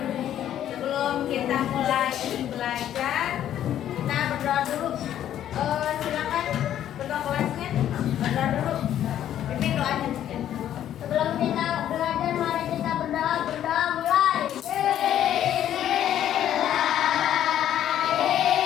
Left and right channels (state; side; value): quieter; right; 11.1 dB